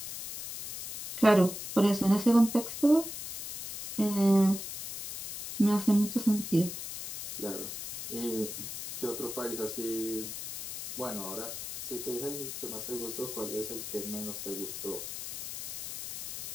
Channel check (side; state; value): left; noise; hiss, 7 dB below the sound